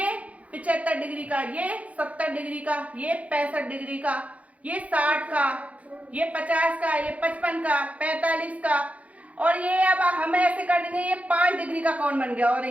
75 डिग्री का, ये 70 डिग्री का, ये 65 डिग्री का, ये 60 का, ये 50 का, ये 55 का, 45 का, और ये अब हम ऐसे कर देंगे ये 5 डिग्री का कोण बन गया और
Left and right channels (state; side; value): late; left; 0.067 ms